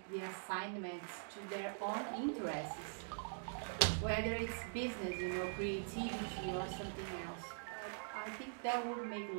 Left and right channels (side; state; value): left; silent; digital silence